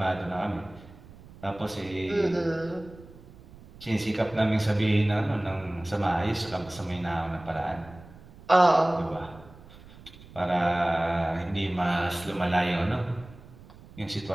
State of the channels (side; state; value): right; noise; rumble, 20 dB below the sound